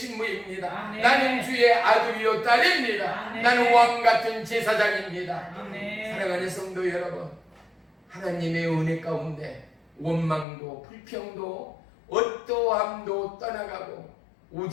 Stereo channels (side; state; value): right; drops out; at 10.5 s